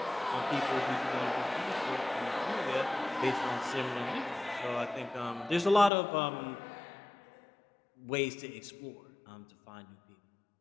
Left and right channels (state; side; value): drops out; right; at 5.9 s